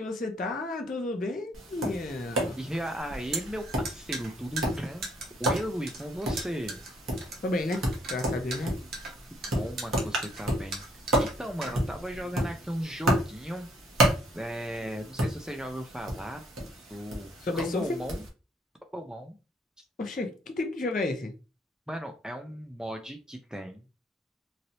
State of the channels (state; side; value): normal; both; correlation 0.66